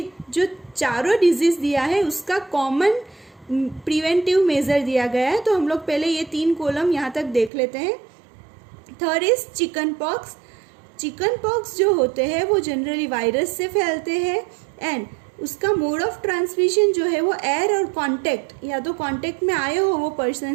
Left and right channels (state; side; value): drops out; left; at 7.5 s